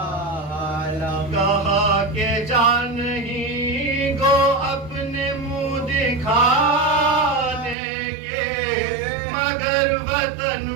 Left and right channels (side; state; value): left; drops out; at 7.8 s